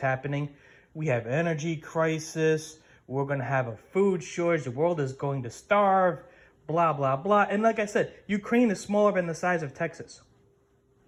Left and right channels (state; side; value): identical; both; correlation 1.00